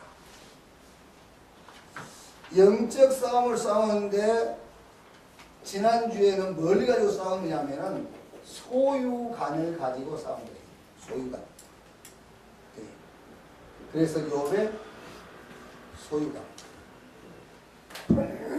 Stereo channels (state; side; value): identical; both; correlation 1.00